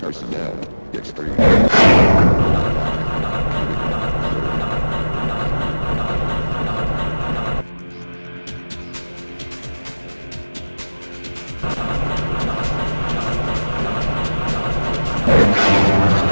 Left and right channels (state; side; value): inverted; both; correlation -1.00